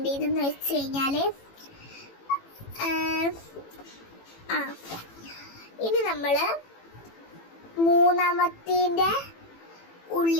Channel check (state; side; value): late; right; 18 ms